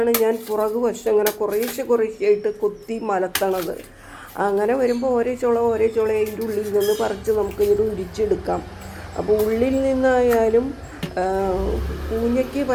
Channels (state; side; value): identical; both; correlation 1.00